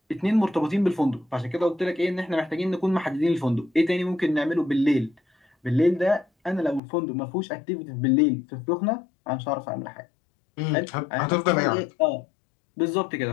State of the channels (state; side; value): drops out; right; at 6.8 s